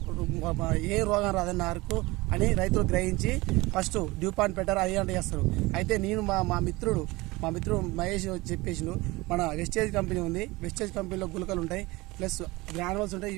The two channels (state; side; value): quieter; left; 21.8 dB